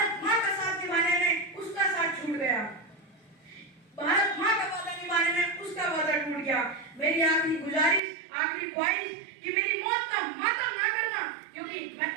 माँ का साथ निभाने में उसका साथ छूट गया, भारत माँ का वादा निभाने में उसका वादा टूट गया। मेरी आखिरी गुजारिश, आखिरी ख्वाहिश कि मेरी मौत का मातम ना करना, क्योंकि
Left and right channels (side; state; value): left; drops out; at 8.0 s